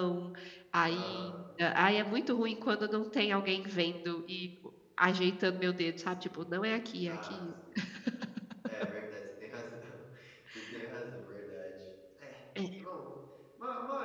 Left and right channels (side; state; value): both; identical; correlation 1.00